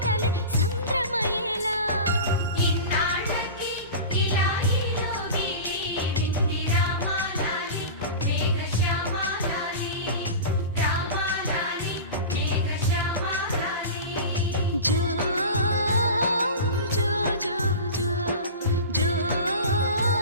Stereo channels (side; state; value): both; inverted; correlation -0.31